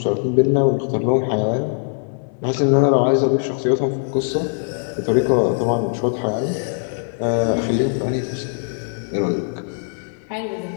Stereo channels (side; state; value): right; silent; 62 dB below the other